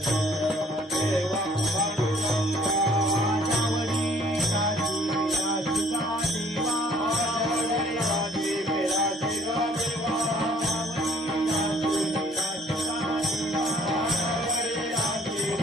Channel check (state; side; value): normal; both; correlation 0.58